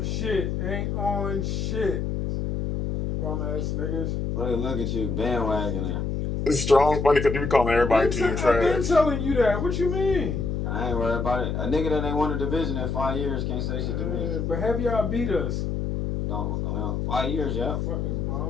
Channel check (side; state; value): left; noise; hum, 1 dB below the sound